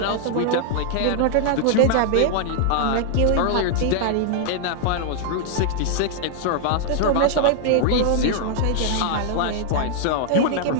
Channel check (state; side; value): different; both; correlation -0.01